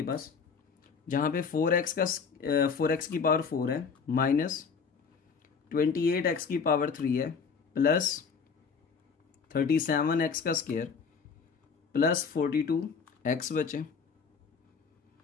पास, जहां पे 4x की पावर 4 है, माइनस 28x की पावर 3 है, प्लस 37x का स्क्वायर, प्लस 42x बचे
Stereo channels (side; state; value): right; quieter; 5.7 dB